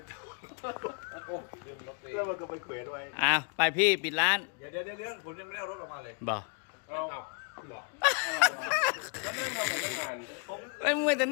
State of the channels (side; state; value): right; quieter; 36.1 dB